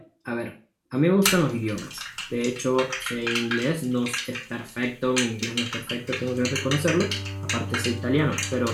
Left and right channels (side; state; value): both; identical; correlation 1.00